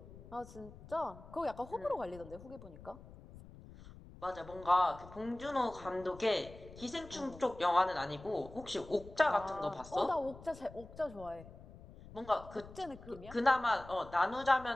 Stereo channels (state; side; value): noise; left; rumble, 17 dB below the sound